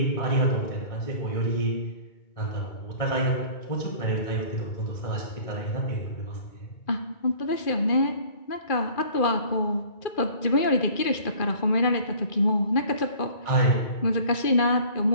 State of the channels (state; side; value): late; right; 2.4 ms